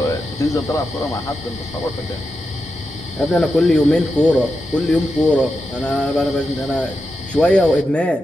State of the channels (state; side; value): normal; both; correlation 0.88